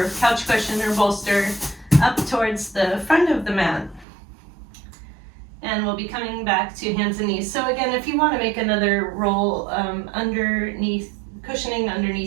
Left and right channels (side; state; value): left; drops out; at 4.0 s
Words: couch cushion or bolster up towards the front of the mat. And we'll be coming back to hands and knees. So again, if you want to make another roll underneath, cushioning